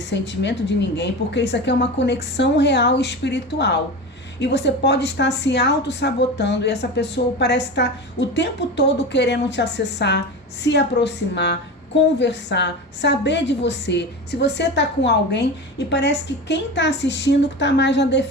sentimento de ninguém, porque isso aqui é uma conexão real e espiritual. E você pode estar se auto-sabotando e essa pessoa parece estar o tempo todo querendo te acessar, se aproximar, conversar, saber de você. Se você está com alguém e parece que quem está assistindo está mais na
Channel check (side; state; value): both; normal; correlation 0.27